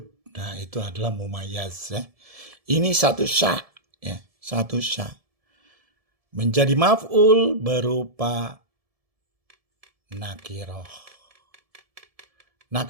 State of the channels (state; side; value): late; left; 1.7 ms